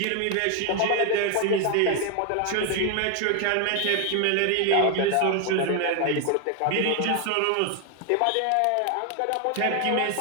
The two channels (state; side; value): different; both; correlation 0.01